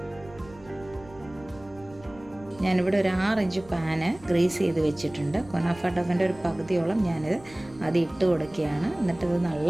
ഞാനിവിടെ ഒരു 6 ഇഞ്ച് പാന് ഗ്രീസ് ചെയ്ത് വെച്ചിട്ടുണ്ട്. കുനാഫ ഡവിൻ്റെ ഒരു പകുതിയോളം ഞാനിത് അത് ഇട്ട് കൊടുക്കുകയാണ്. എന്നിട്ട് ഇത്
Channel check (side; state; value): right; noise; rumble, 22 dB below the sound